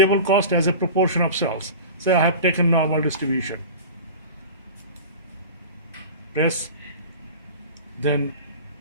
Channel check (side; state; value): both; inverted; correlation -0.33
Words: cost as a proportion of sales. Say I have taken normal distribution. Press, then